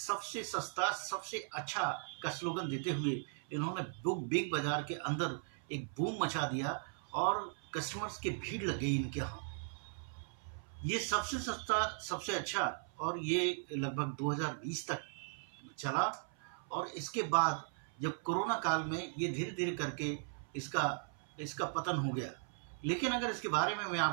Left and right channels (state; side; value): silent; left; 52 dB below the other